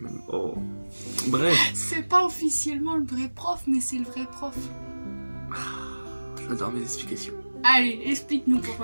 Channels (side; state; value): both; inverted; correlation -1.00